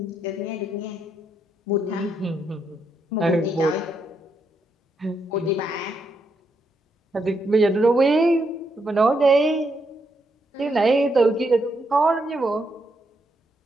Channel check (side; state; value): both; normal; correlation 0.79